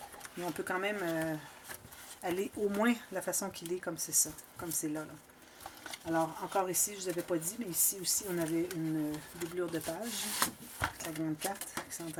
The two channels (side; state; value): both; identical; correlation 1.00